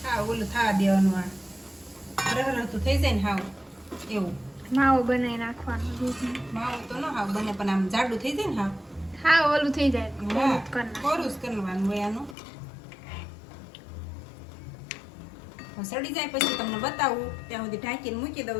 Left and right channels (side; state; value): right; drops out; at 12.4 s